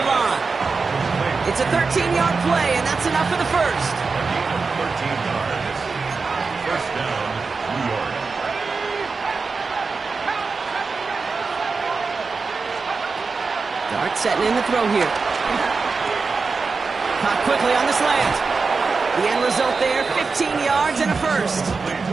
line. It's a 13-yard play, and that's enough for the first. 13 yards. First down, New York. Dart setting in the throw here. Caught quickly on the slant. The end result there, 15 yards and a first.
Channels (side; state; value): left; quieter; 4.5 dB